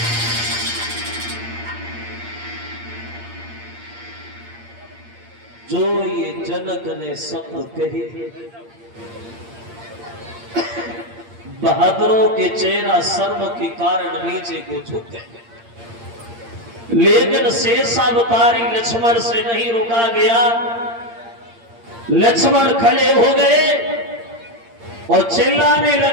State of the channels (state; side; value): late; left; 8.7 ms